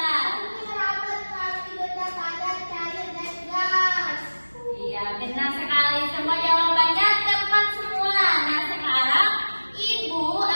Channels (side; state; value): both; inverted; correlation -1.00